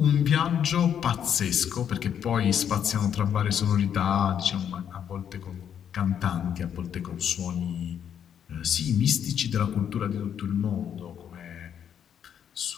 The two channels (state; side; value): quieter; right; 8.8 dB